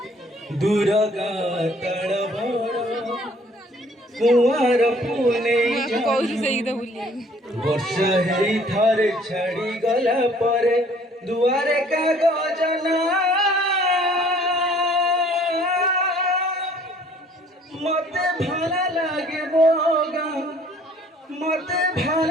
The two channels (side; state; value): both; normal; correlation 0.57